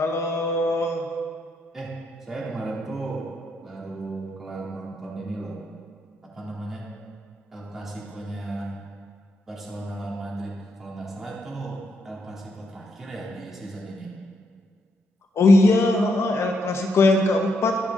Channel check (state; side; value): normal; both; correlation 0.79